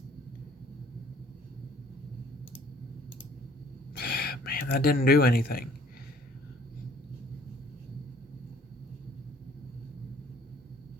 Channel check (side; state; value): both; normal; correlation 0.57